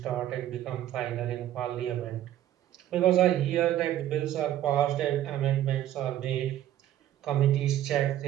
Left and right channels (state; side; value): quieter; left; 12.6 dB